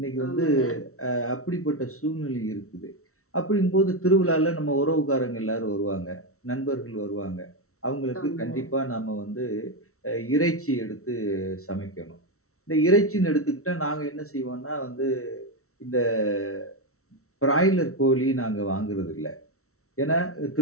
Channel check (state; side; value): late; right; 0.63 ms